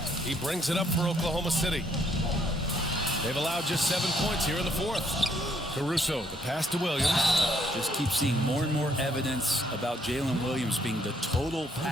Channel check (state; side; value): normal; both; correlation 0.69